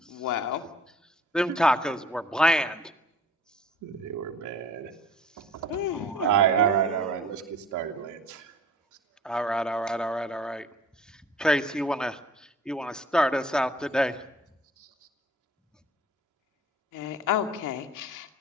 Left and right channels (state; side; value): normal; both; correlation 0.48